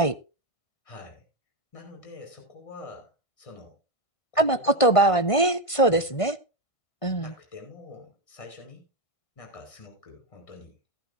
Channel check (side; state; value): right; late; 1.5 ms